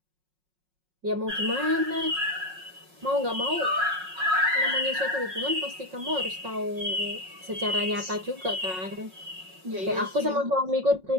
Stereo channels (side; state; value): left; late; 5.5 ms